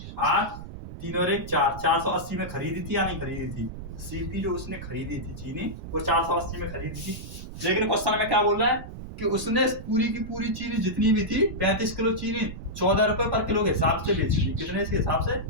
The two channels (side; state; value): right; noise; rumble, 11 dB below the sound